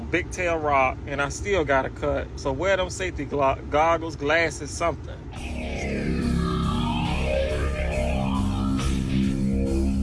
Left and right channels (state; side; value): identical; both; correlation 1.00